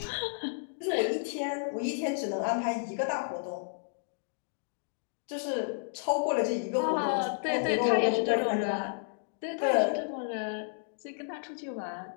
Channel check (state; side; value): silent; right; digital silence